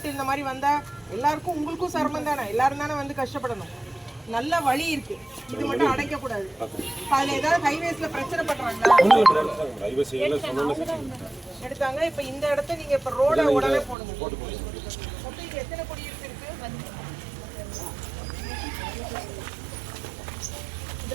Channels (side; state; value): left; drops out; at 14.0 s